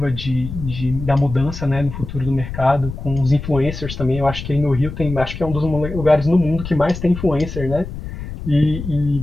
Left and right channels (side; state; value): left; noise; rumble, 9 dB below the sound